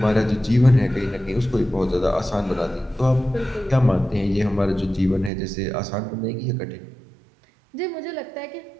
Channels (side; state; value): left; drops out; at 5.3 s